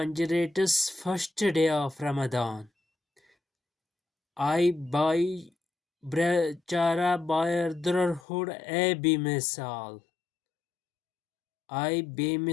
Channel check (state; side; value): drops out; right; at 8.2 s